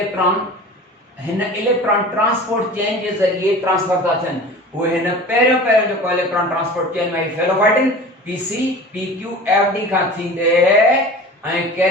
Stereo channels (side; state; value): both; normal; correlation 0.38